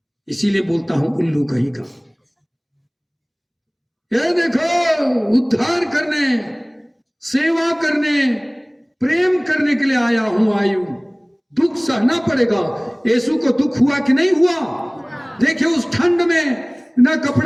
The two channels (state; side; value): identical; both; correlation 1.00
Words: इसीलिए बोलता हूं उल्लू कहीं का। ये देखो, उद्धार करने, सेवा करने, प्रेम करने के लिए आया हूं, आयु। दुख सहना पड़ेगा। यीशु को दुख हुआ कि नहीं हुआ? देखिए उस ठंड में ना